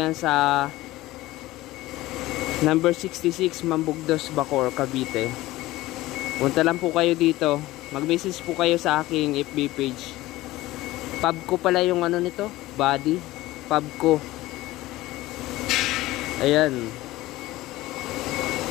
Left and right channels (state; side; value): quieter; right; 17.6 dB